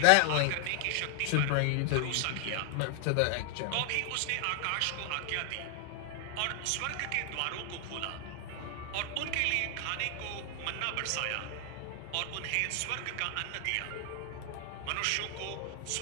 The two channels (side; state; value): both; different; correlation 0.00